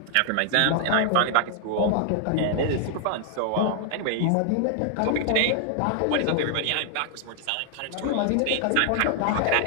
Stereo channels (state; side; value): different; both; correlation 0.00